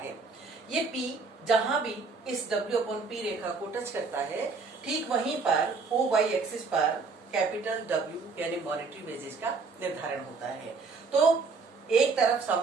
ये P जहां भी इस W अपॉन P रेखा को टच करता है, ठीक वहीं पर OY एक्सिस पर कैपिटल W यानी मॉनेटरी वेजेस का निर्धारण होता है। तो एक तरफ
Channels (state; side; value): quieter; left; 4.5 dB